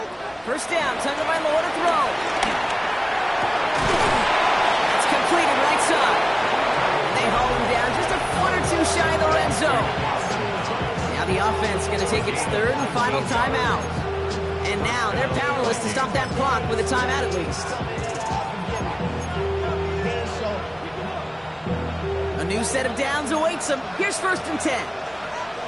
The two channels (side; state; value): both; identical; correlation 1.00